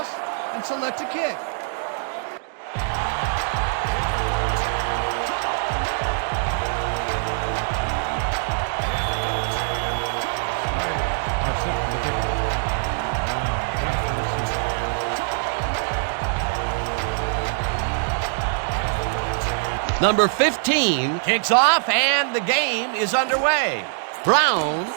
and select a kick. Number 15 kicks off, and the game is underway. Brown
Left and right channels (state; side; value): silent; left; digital silence